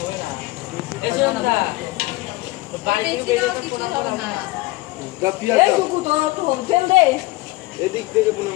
না। বাড়ি থেকে বেরিয়ে তো ফটো হবে না।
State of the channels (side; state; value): right; quieter; 20.5 dB